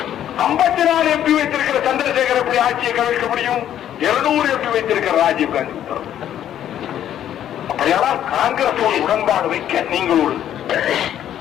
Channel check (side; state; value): right; quieter; 10.8 dB